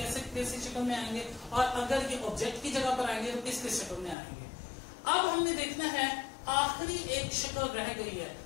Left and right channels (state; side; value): drops out; right; at 4.2 s